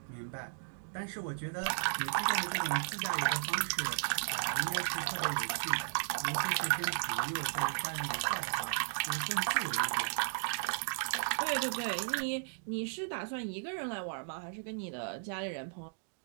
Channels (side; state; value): left; silent; digital silence